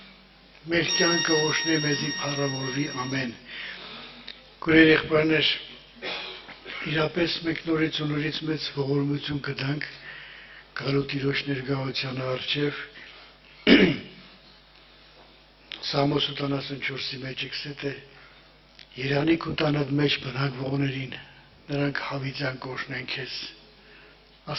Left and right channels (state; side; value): identical; both; correlation 1.00